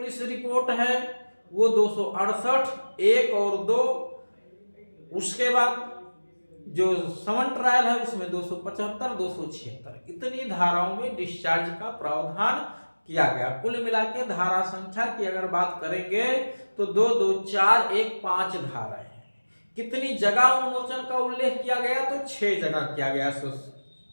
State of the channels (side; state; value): both; inverted; correlation -1.00